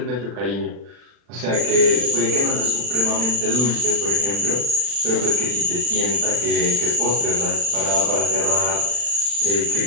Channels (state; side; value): late; left; 40 ms